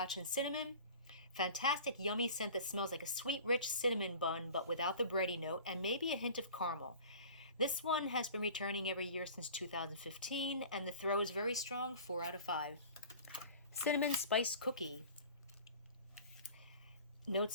and cinnamon. Fantastic, yummy scent that smells like a sweet, rich cinnamon bun, but without the bready note, and maybe a hint of caramel. This one has been returning every year since 2015, and the throw is very strong, 4 out of 5. Cinnamon Spice Cookie.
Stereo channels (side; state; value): both; inverted; correlation -0.42